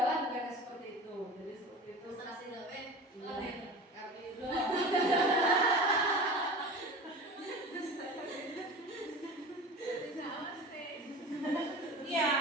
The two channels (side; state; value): both; normal; correlation 0.35